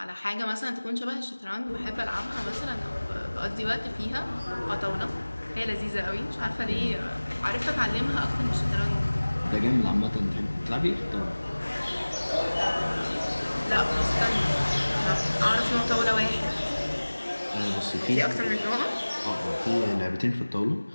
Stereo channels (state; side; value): inverted; both; correlation -1.00